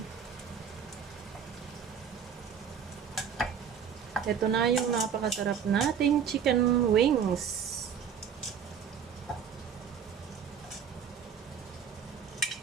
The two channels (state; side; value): quieter; left; 7.5 dB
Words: Ito na yung napakasarap nating chicken wings.